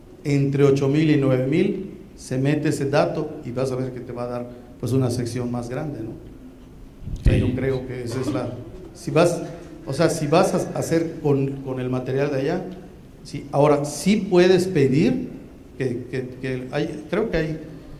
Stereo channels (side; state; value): both; identical; correlation 1.00